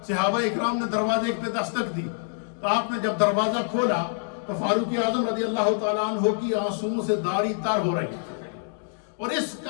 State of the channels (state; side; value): silent; right; digital silence